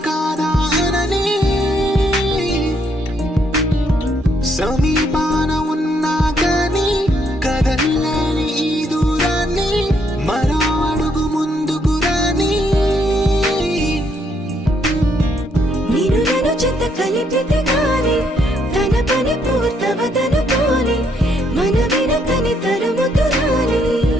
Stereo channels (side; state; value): both; normal; correlation 0.72